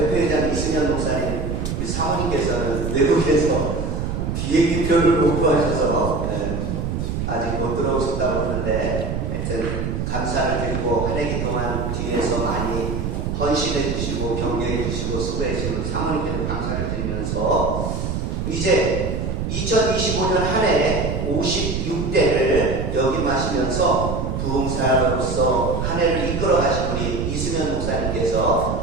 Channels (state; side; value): noise; right; rumble, 2 dB below the sound